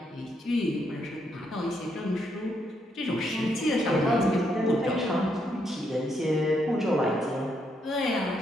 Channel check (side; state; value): both; normal; correlation 0.77